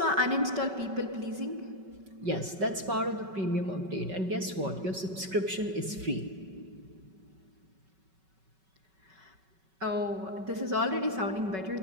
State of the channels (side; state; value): left; late; 5.3 ms